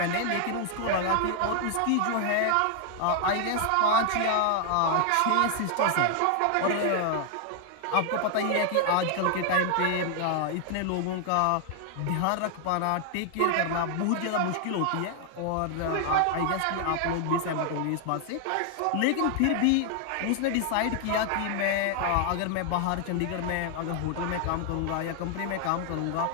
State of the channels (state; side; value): different; both; correlation 0.00